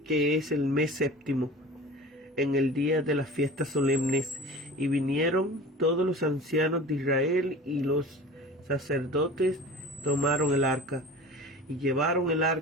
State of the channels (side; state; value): both; normal; correlation 0.38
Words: es el mes séptimo, en el día de las fiestas solemnes, y vinieron todos los ancianos de Israel, y los sacerdotes tomaron el arca, y llevaron el